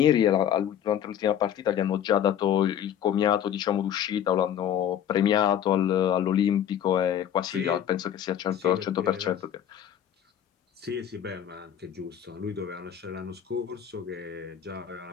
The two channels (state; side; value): quieter; right; 9.8 dB